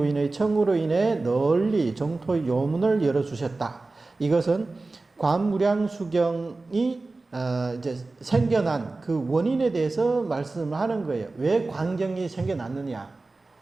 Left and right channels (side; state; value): left; quieter; 3.4 dB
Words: 청으로 인해 널리 정토의 요문을 열어주셨다. 이것은 관무량수경이 이제 생겨난 그 원인에 대해서 말씀을 하는 거예요. 왜 광경이 생겨났느냐?